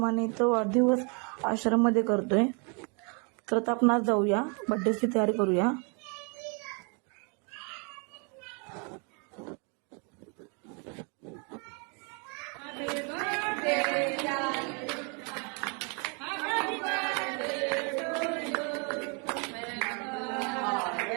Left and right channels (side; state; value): left; quieter; 35.4 dB